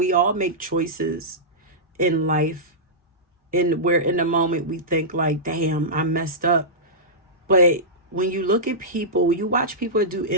all make choices in life, and where in the moment we think like, damn, I messed up. But when you look at people, you watch people do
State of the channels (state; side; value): normal; both; correlation -0.14